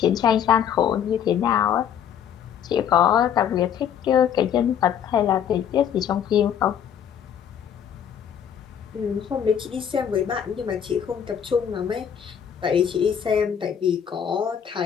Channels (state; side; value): quieter; right; 8.7 dB